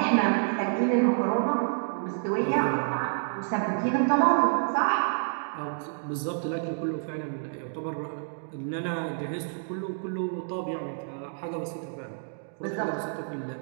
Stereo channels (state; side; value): silent; left; digital silence